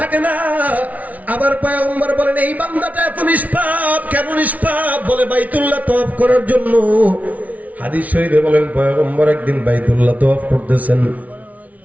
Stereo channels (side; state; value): left; late; 0.071 ms